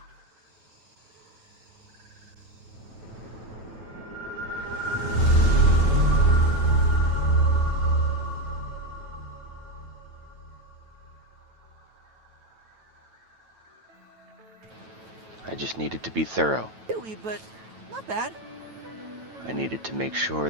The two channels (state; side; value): late; left; 9.1 ms